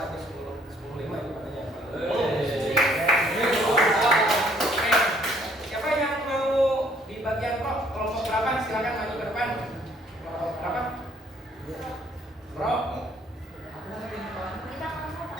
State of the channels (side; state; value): both; normal; correlation 0.63